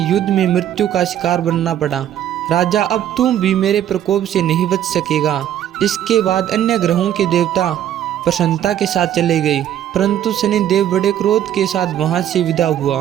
युद्ध में मृत्यु का शिकार बनना पड़ा। राजा, अब तुम भी मेरे प्रकोप से नहीं बच सकेगा। इसके बाद अन्य ग्रहों के देवता प्रसन्नता के साथ चले गए, परंतु शनिदेव बड़े क्रोध के साथ वहां से विदा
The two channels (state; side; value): quieter; left; 11.0 dB